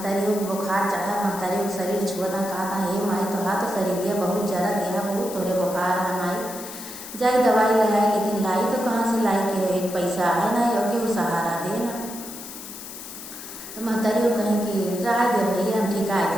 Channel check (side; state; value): left; noise; hiss, 12 dB below the sound